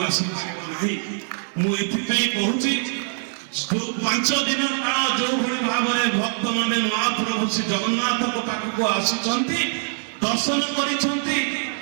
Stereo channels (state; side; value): silent; left; 63 dB below the other